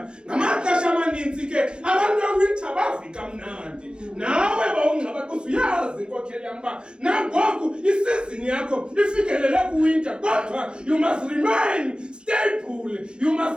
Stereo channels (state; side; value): late; left; 0.051 ms